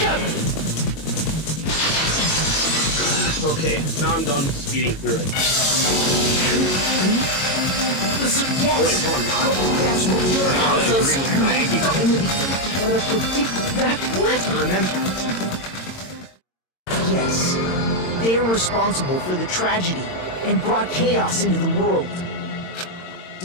Okay, now I'm done speeding through it. Yes. Oh wait, no I'm not. That's what we're I also agree with Maggie. But that what? Remember? Yes. They are responsible for the tragedy and brought chaos into the world.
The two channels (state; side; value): late; right; 22 ms